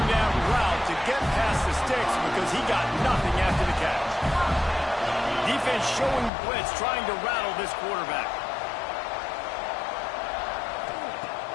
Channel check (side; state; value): right; drops out; at 6.3 s